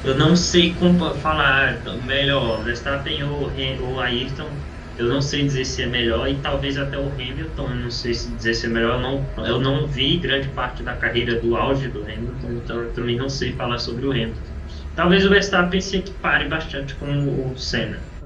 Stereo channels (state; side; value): identical; both; correlation 1.00